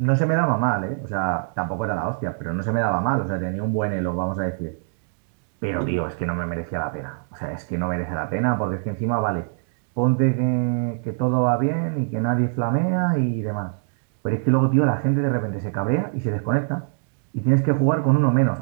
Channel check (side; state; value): left; silent; digital silence